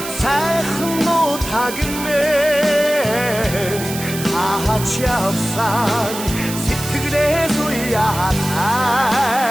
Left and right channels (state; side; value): noise; right; hiss, 9 dB below the sound